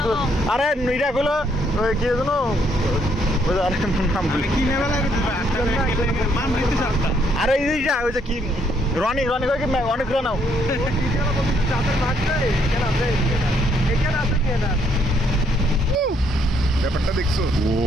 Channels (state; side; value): normal; both; correlation 0.70